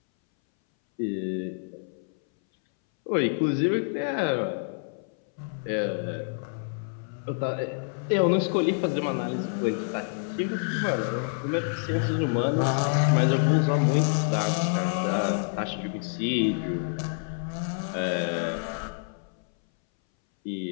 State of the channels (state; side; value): silent; right; 60 dB below the other